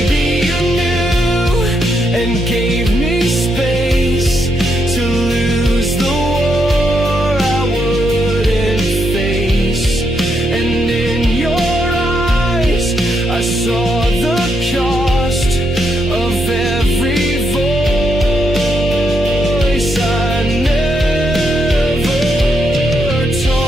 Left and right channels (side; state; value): both; normal; correlation 0.79